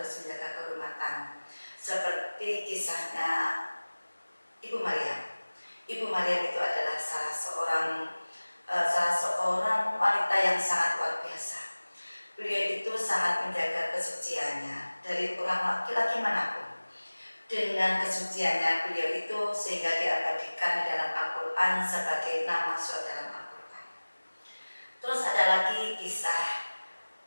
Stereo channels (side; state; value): both; inverted; correlation -1.00